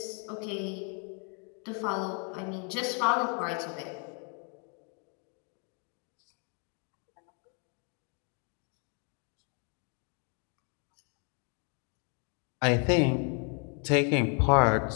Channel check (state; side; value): quieter; right; 38.3 dB